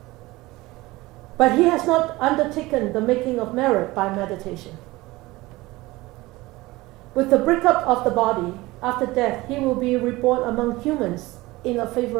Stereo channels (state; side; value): quieter; left; 20.1 dB